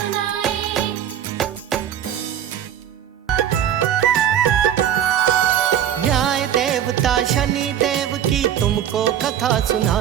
न्याय देवता शनि देव की तुमको कथा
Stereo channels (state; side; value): quieter; left; 10.1 dB